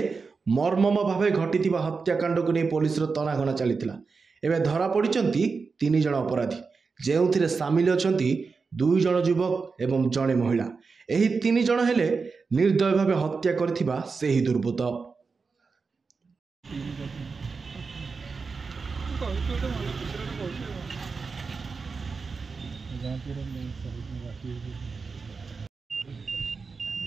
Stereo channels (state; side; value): quieter; left; 4.7 dB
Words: मर्मम भावे घटिथिबा हत्याकांड को नहीं पुलिस तनाघना चलीथिला। एबे धरा पड़िचंती 3 जण अपराधी, जेउथिरे सामिल अछंती 2 जण युवक एवं जणे महिला। एही 3 जण हेले निर्दय भावे हत्या करथिबा सेही दुर्बृत्त।